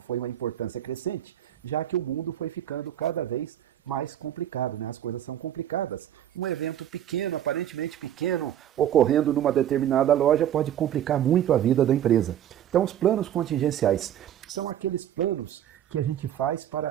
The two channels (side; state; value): left; quieter; 11.0 dB